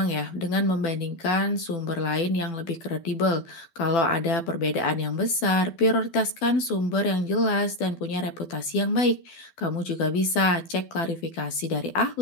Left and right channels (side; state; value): right; late; 12 ms